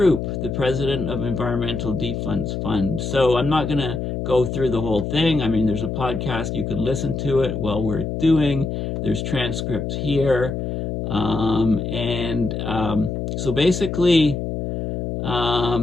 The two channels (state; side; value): noise; left; hum, 3 dB below the sound